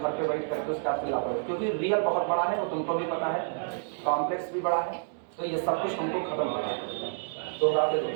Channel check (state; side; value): silent; left; digital silence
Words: पे वेट करके उसका लापरवाही, क्योंकि रियल बहुत बड़ा है, वो तुमको भी पता है, कॉम्प्लेक्स भी बड़ा है, तो ये सब कुछ तुमको खत्म करना है। दोहराते